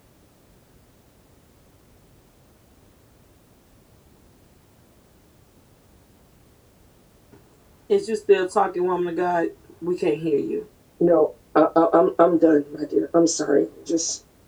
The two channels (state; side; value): identical; both; correlation 1.00